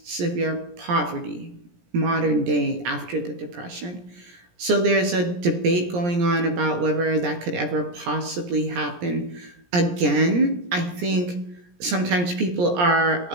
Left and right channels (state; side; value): late; left; 17 ms